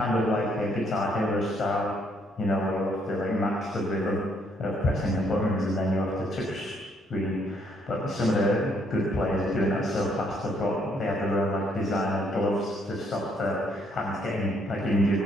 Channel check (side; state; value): both; normal; correlation 0.69